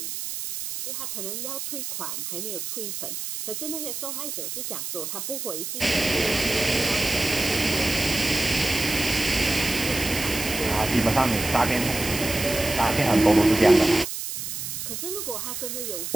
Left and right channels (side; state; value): right; noise; hiss, 6 dB below the sound